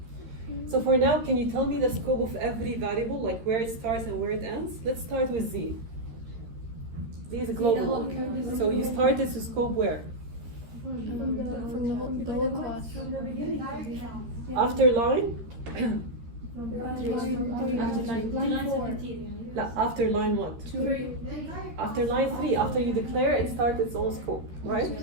So for now, can you tell me the scope of every variable, like where it starts and where it ends? Let's start with Z. Z is a global one. So you start this scope where? From the whole class. After line? Line 4. No, after line what? 3. After line 3, after you declare it starts its own scope, right?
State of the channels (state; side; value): late; left; 13 ms